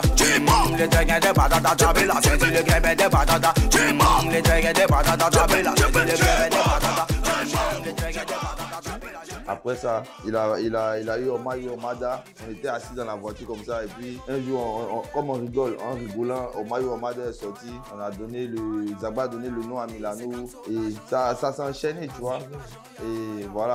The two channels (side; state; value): both; identical; correlation 1.00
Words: le dragon de patata, j'avais la tête, le grain de patata, le dragon de patata, j'avais la tête, le grain de patata, le dragon de patata. Après ça, il a eu Omayo Omada. On était assis dans la voiture comme ça. Et puis, un jour, comme on rigole, en rigolant, Omayo Omada est sorti. Zagba a donné le nom à Milano. Et ça s'est enchaîné, tu vois. Et